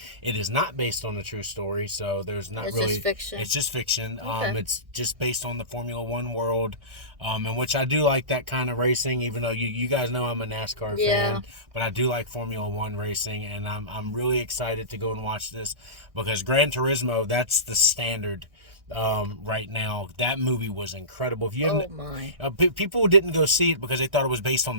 It is not based on a true story, so there's not really... It's just fiction. It's just fiction. Okay. It's just based on the Formula One world, in which I do like that kind of racing, even though you guys know I'm a NASCAR fan, but I do like Formula One racing, and I'm really excited to go and watch this because Gran Turismo, that's the standard right now. That movie was incredible. If you people didn't go see it because they thought it was based on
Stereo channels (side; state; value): left; late; 1.6 ms